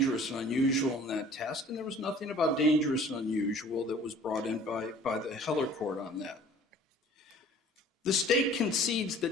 and unusual in that test, and there was nothing about dangerous and unusual that was brought in by the Heller court on that. The state concedes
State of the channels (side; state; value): both; normal; correlation 0.50